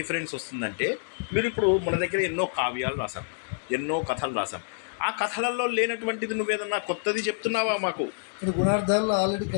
వస్తుందంటే, మీరు ఇప్పుడు మన దగ్గర ఎన్నో కావ్యాలు రాసాం, ఎన్నో కథలు రాసాం. ఆ కథలలో లేనటువంటిది నువ్వేదన్నా కొత్తది చెప్తున్నావా మాకు? గుణార్థాల్లో ఆల్రెడీ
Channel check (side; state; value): right; silent; digital silence